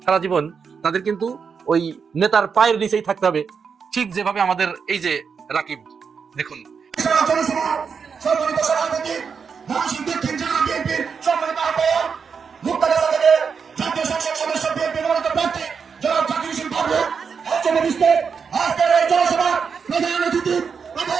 সারা জীবন? তাদের কিন্তু ওই নেতার পায়ের নিচেই থাকতে হবে, ঠিক যেভাবে আমাদের এই যে রাকিব, দেখুন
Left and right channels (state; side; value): quieter; left; 6.0 dB